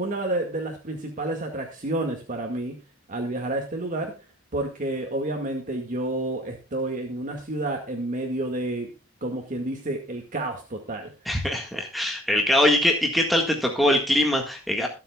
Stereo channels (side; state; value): both; normal; correlation 0.55